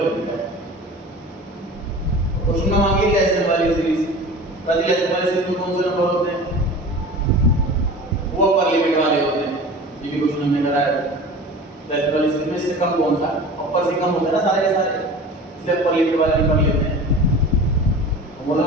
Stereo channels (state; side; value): normal; both; correlation 0.37